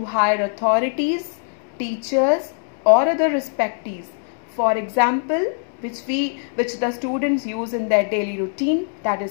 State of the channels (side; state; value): right; silent; digital silence